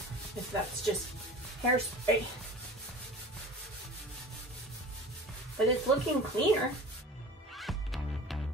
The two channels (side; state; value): both; normal; correlation 0.39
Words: if that's just hairspray. But it's looking cleaner.